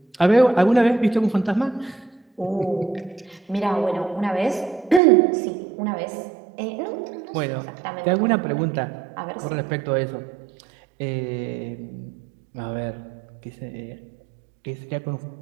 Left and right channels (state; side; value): drops out; left; at 5.0 s